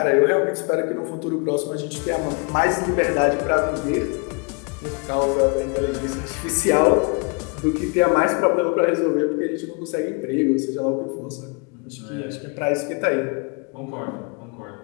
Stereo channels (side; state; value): right; quieter; 32.7 dB